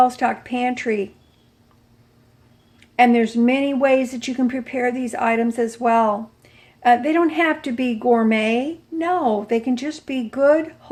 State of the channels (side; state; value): both; identical; correlation 1.00